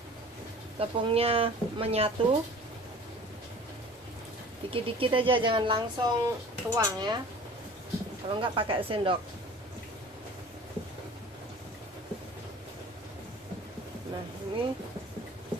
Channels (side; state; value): both; normal; correlation 0.44